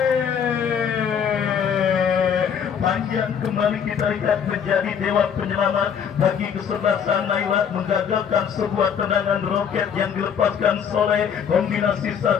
Panjang kembali kita lihat menjadi dewa penyelamat bagi kesebelasan Naila, menggagalkan sebuah tendangan roket yang dilepaskan Soleh. Kombinasi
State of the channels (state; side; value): quieter; right; 7.6 dB